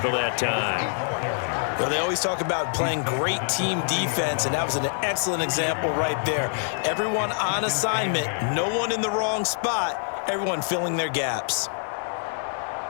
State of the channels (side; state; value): right; silent; digital silence